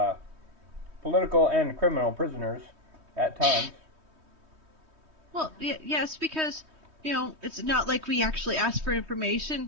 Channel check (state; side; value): late; left; 3.2 ms